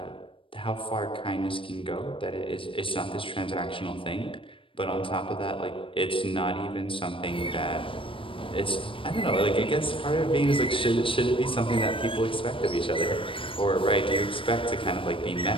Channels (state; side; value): late; right; 0.25 ms